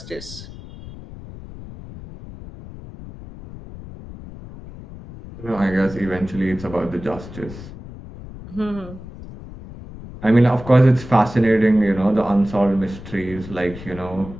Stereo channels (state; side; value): noise; left; rumble, 14 dB below the sound